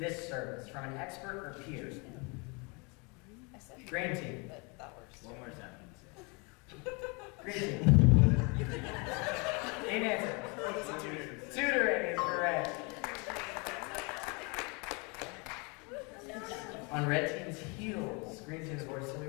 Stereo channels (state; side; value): quieter; right; 30.9 dB